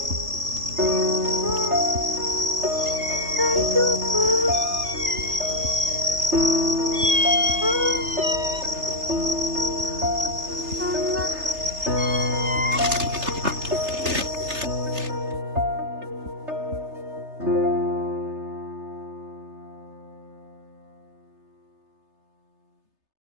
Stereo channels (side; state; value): left; late; 3.3 ms